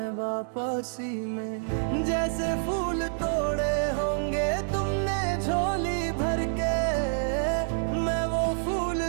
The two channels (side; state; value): left; silent; 60 dB below the other